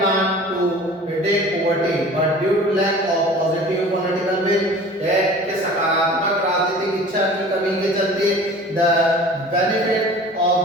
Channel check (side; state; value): both; normal; correlation 0.43